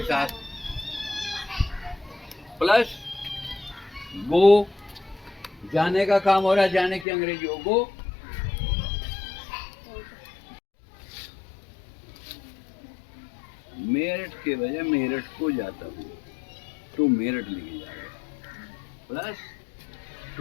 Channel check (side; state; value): right; drops out; at 7.1 s